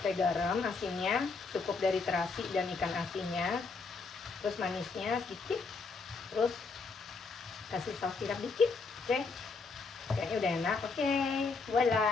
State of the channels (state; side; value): quieter; right; 4.3 dB